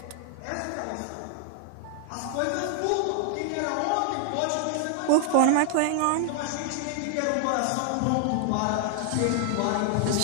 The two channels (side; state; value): both; different; correlation 0.00